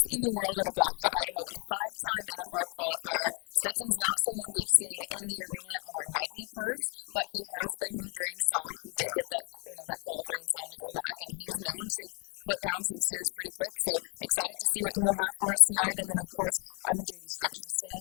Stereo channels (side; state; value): right; quieter; 35.4 dB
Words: in the world at a Blackfoot, Idaho, a 5-time NFR qualifier. Stetson's not someone we've seen in the arena on our nightly perfs, but he has been here during slack. He did get that qualifying time to come back, and he's known to put down some steers pretty quick. So excited to see what he'll have for us tonight. And then of course I'm a JD Structionist